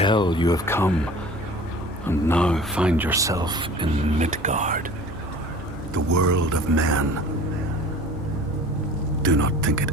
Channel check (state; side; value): normal; both; correlation 0.43